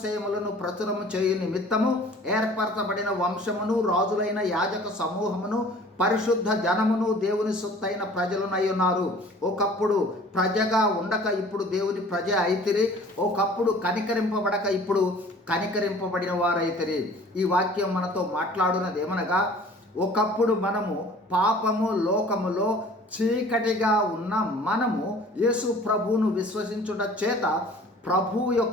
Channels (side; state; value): both; normal; correlation 0.49